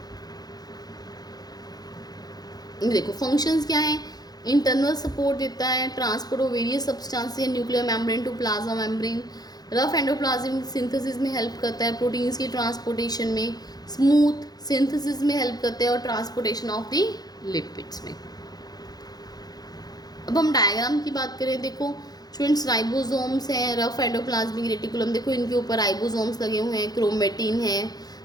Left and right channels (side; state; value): right; late; 0.19 ms